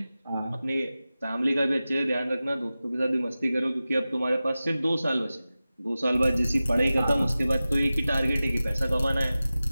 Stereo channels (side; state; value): both; inverted; correlation -0.96